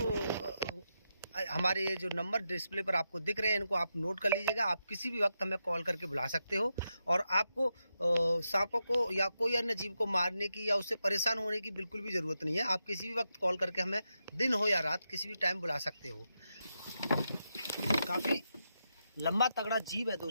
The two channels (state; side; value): inverted; both; correlation -0.86